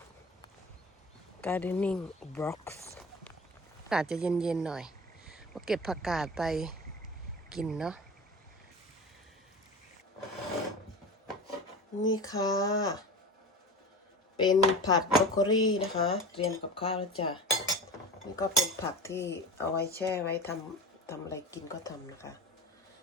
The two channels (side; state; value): both; normal; correlation 0.32